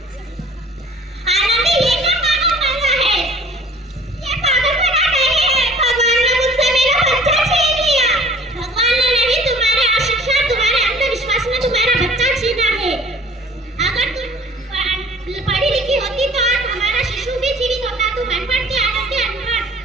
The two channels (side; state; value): both; normal; correlation 0.50